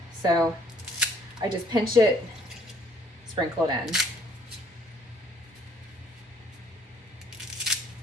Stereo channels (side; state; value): both; normal; correlation 0.61